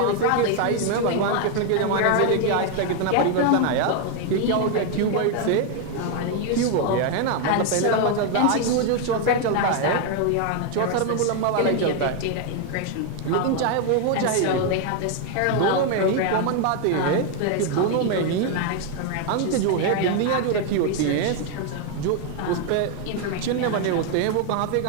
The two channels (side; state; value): both; different; correlation 0.01